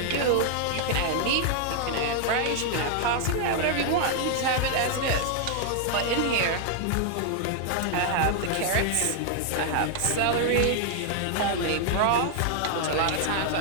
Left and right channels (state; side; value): different; both; correlation 0.00